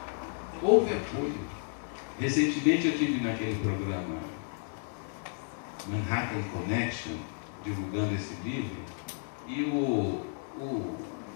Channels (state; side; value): silent; right; 56 dB below the other